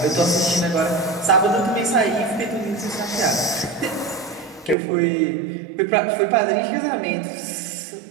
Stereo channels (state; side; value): drops out; left; at 4.8 s